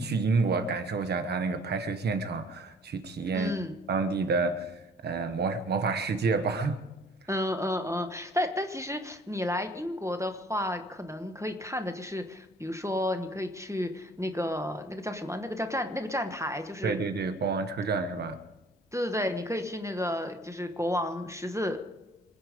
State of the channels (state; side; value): normal; both; correlation 0.54